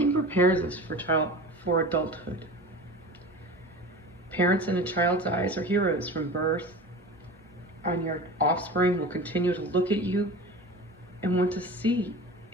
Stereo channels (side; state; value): both; normal; correlation 0.34